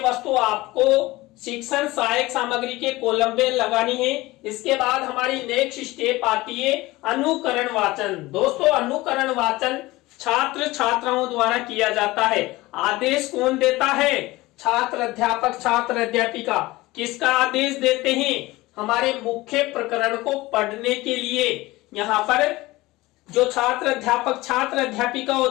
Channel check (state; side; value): quieter; right; 19.7 dB